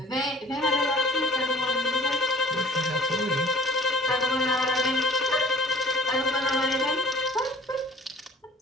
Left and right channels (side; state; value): both; normal; correlation 0.51